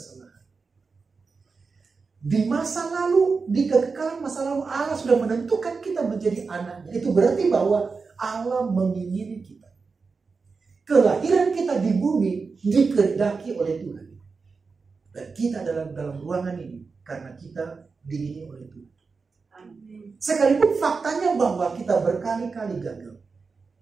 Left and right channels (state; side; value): quieter; left; 4.7 dB